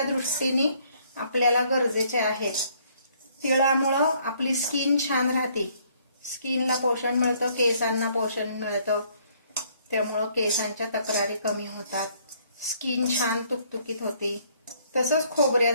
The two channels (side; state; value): both; inverted; correlation -0.65